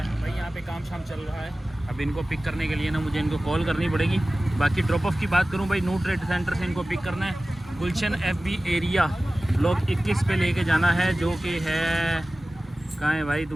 है भाई, यहाँ पे काम शाम चल रहा है। अब इनको पिक करने के लिए ना मुझे इनको कॉल करनी पड़ेगी। बाकी ड्रॉप ऑफ की बात करूँ भाई, नू ट्रेड सेंटर से इनको पिक करना है। गुलशन FB एरिया ब्लॉक 21 पे लेके जाना है, जो कि है कहाँ है भाई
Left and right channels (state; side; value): normal; both; correlation 0.96